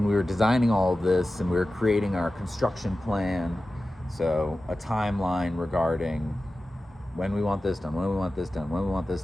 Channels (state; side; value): normal; both; correlation 0.95